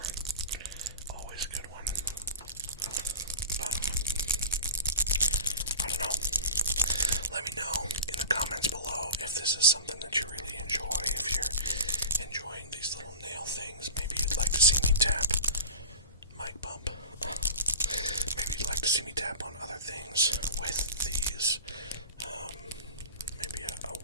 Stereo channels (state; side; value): inverted; both; correlation -0.33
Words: Always a good one. But, I don't know. Let me know in the comments below if this is something that you really enjoy. If you're enjoying these little nail things, maybe you'd like to see me tap. Mic bump. Maybe you'd like to see me tap on other things with these. Maybe